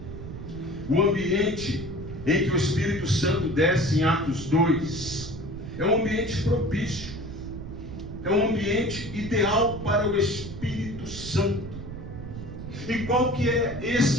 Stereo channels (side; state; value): right; noise; rumble, 10 dB below the sound